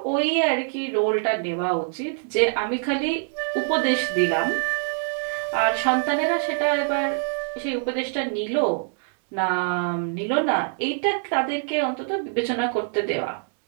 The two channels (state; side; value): silent; left; digital silence